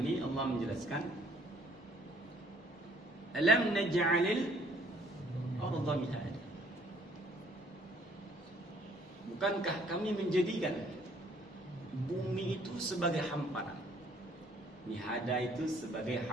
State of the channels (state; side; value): normal; both; correlation 0.61